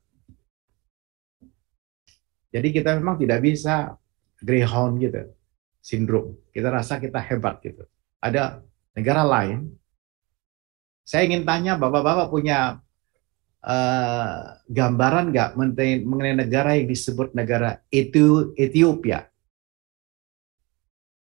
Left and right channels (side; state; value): left; quieter; 26.0 dB